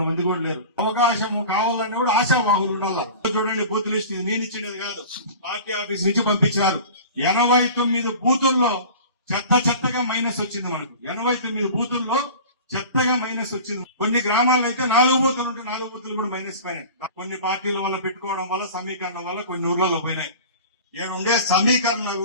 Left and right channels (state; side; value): inverted; both; correlation -0.38